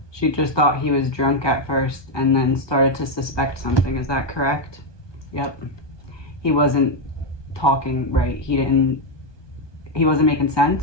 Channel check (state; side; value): late; right; 1.2 ms